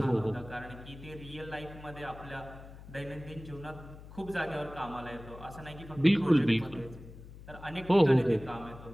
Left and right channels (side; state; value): left; noise; hum, 16 dB below the sound